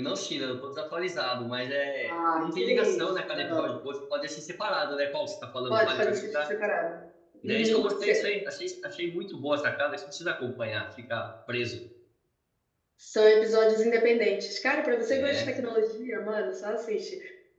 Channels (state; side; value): identical; both; correlation 1.00